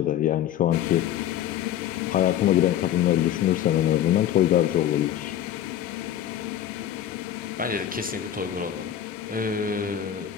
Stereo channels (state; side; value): quieter; right; 11.0 dB